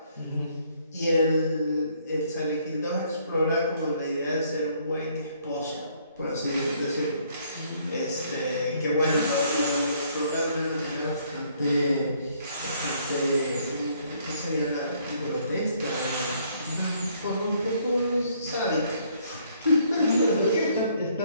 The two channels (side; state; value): both; inverted; correlation -0.66